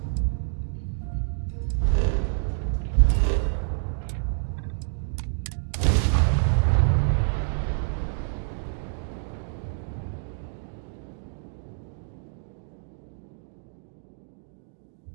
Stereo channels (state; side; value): silent; left; digital silence